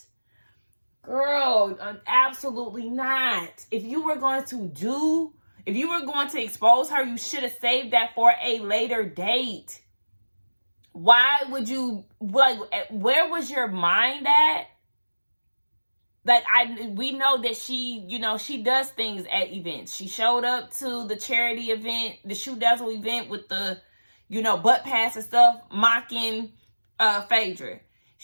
Girl, absolutely not. If you were going to expose her, you should have saved that for a later date. Why would you, like, where was your mind at? Like, we know that she, she does things at events. She showed up to the charity event, the Shoe Dazzle event with the, butt pass and stuff, mocking Phaedra.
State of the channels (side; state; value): both; inverted; correlation -1.00